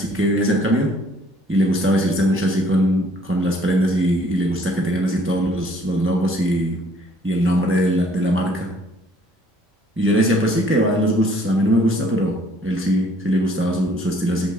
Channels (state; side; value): normal; both; correlation 0.60